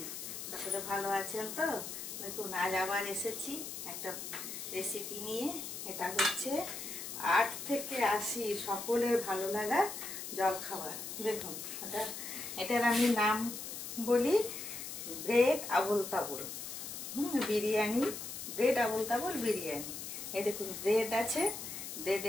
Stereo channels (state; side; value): noise; left; hiss, 7 dB below the sound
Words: সকলে ভালো আছেন তো? দেখুন আজ আবার এসেছি একটা রেসিপি নিয়ে। এটা হচ্ছে 8 থেকে 80 সকলের ভালো লাগা জলখাবার। দেখুন এটার আমি নাম বলি ব্রেড আবুল তাবুল। বিরিয়ানি, ব্রেড আবুল তাবুল বিরিয়ানি। এই দেখুন ব্রেড আছে,